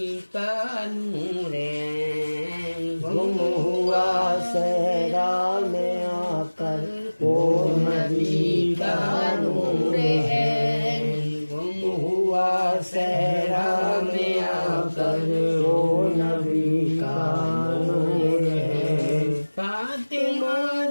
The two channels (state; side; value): inverted; both; correlation -1.00